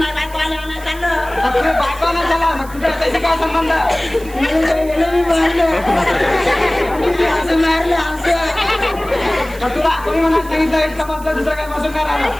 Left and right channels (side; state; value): right; noise; hiss, 20 dB below the sound